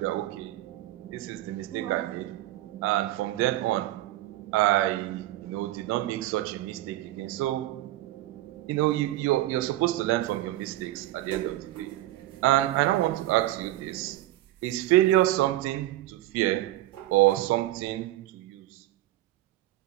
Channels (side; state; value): left; quieter; 15.8 dB